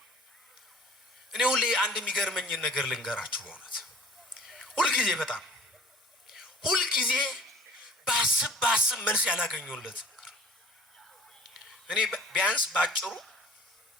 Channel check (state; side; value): normal; both; correlation 0.49